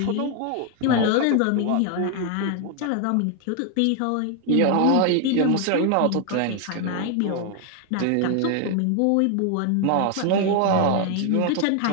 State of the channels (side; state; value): both; different; correlation 0.01